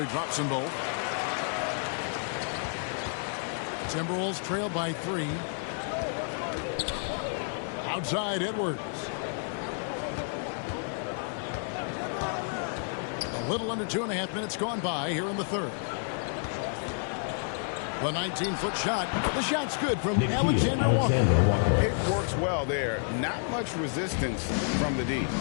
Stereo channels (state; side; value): silent; right; 58 dB below the other